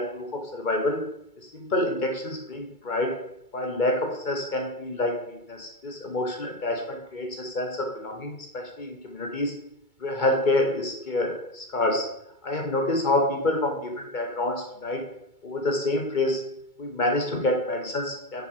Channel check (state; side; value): late; right; 2.2 ms